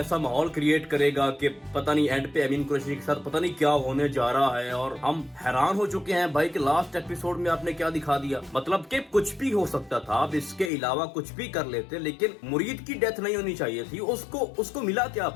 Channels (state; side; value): drops out; right; at 10.7 s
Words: माहौल क्रिएट करेगा कि पता नहीं एंड पे अमीन कुरैशी के साथ पता नहीं क्या होने जा रहा है। और हम हैरान हो चुके हैं भाई कि लास्ट एपिसोड में आपने क्या दिखा दिया। मतलब कि कुछ भी हो सकता था, अब इसके अलावा कुछ भी कर लेते, लेकिन मुरीद की डेथ नहीं होनी चाहिए थी। उसको मिला क्या